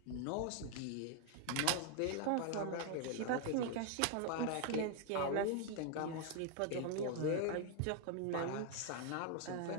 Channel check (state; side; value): different; both; correlation 0.01